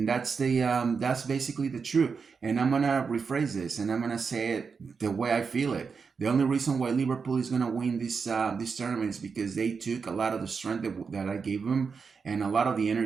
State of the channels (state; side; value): quieter; left; 5.5 dB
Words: that's basically the truth. And I'm gonna rephrase this, and I'm gonna say it the way I feel it. The only reason why Liverpool is gonna win this tournament is because they took a lot of the strength that I gave them and a lot of the